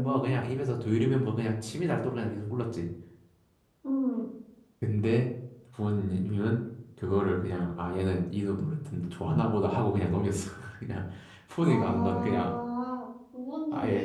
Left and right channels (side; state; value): both; identical; correlation 1.00